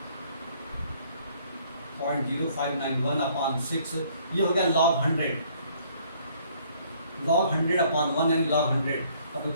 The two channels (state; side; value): inverted; both; correlation -0.62